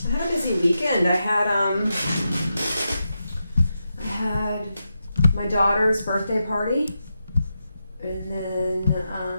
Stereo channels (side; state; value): both; inverted; correlation -0.87